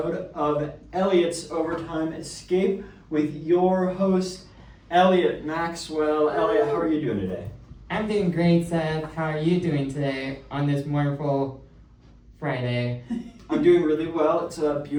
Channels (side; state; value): both; identical; correlation 1.00